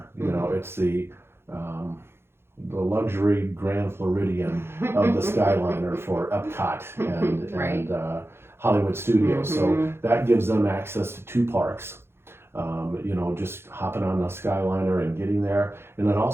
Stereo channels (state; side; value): late; left; 0.12 ms